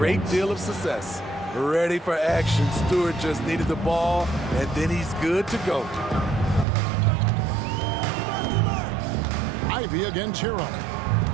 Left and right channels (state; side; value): drops out; left; at 6.7 s